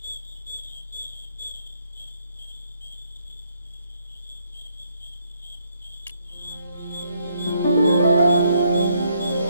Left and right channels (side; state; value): both; inverted; correlation -0.72